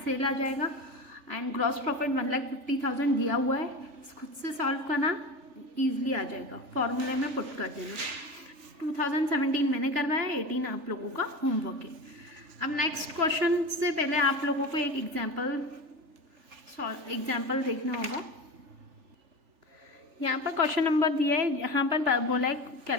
सेल आ जाएगा. एंड ग्रॉस प्रॉफिट 1,50,000 दिया हुआ है, खुद से सॉल्व करना, ईजिली आ जाएगा. फॉर्मूले में पुट कर देना. 2017 मैंने करवाया, 18 आप लोगों का होमवर्क है. अब नेक्स्ट क्वेश्चन से पहले आप लोगों को एक एग्जाम्पल देखना होगा. यहाँ पर क्वेश्चन नंबर दिया है, यहाँ पर बोला है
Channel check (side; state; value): left; late; 3.4 ms